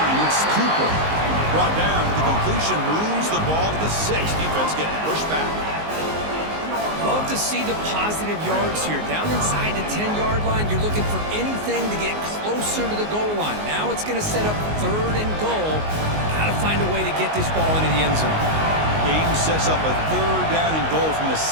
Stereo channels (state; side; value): late; left; 19 ms